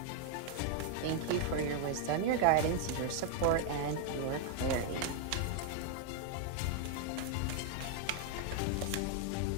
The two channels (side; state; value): both; different; correlation 0.00